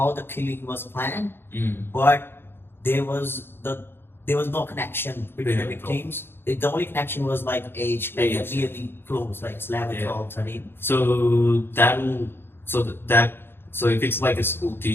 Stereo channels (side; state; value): right; late; 0.11 ms